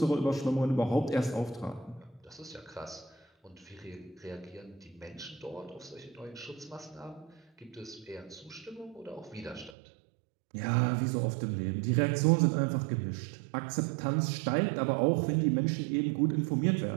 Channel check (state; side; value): drops out; left; at 9.7 s